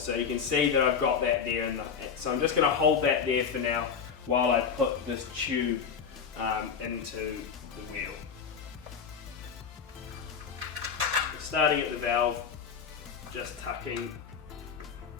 So you can see that I've got that there. So I'm just going to hold that there for now while I put this tube into the wheel. Starting at the valve, just tucking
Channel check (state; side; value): quieter; right; 6.6 dB